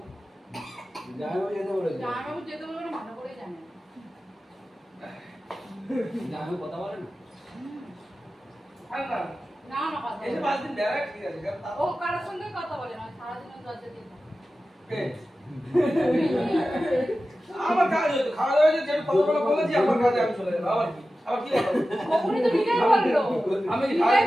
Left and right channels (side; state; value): both; normal; correlation 0.94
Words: জামাইবাবু যেতে বলেছে। জামাইবাবু যেতে বলবে না, ভালো করেই জানে। জামাইবাবু কথা বলে না? আর না, না না কথা এই যে বলে 5 দিন বেড়া ঠিক আছে, কারণ তা- ও কারোর সঙ্গে কথা বলে না, সারাদিন দরজা দিয়ে থাকে। কে? আমার কাজ হতো, খাওয়া দাওয়া হয়েছে, যেটা কতগুলো বলেছি, আমার কাজে আমি চলে যাবো। আবার কি বলো? তখনই তো নিজেই বললো। আমি নিজেই